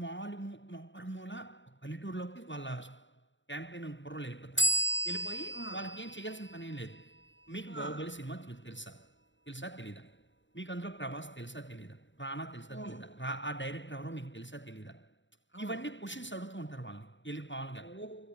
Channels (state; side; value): late; right; 0.54 ms